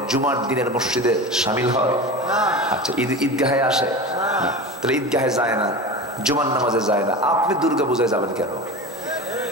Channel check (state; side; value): normal; both; correlation 0.29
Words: জুমার দিনের মসজিদে শামিল হয়? আচ্ছা, ঈদগাহে আসে না, তাহলে ঈদগাহে যায় না, জুমার নামাজে যায় না, আপনি দুর্গা পূজায় যাবেন কেন?